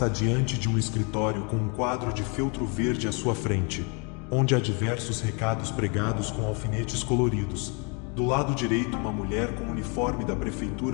diante de um escritório com um quadro de feltro verde à sua frente, onde há diversos recados pregados com alfinetes coloridos. Do lado direito, uma mulher com uniforme da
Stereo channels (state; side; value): quieter; right; 34.1 dB